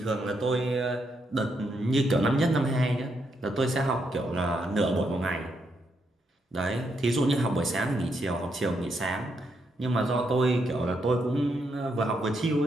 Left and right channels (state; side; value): normal; both; correlation 0.79